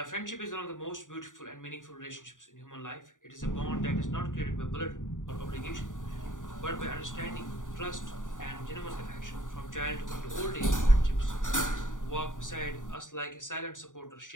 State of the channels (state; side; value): late; right; 0.87 ms